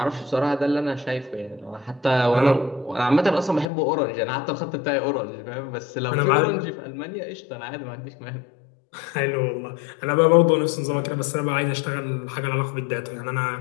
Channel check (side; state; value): right; drops out; at 3.7 s